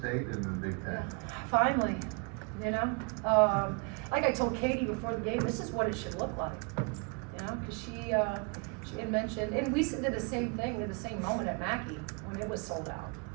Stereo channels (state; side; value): quieter; left; 33.8 dB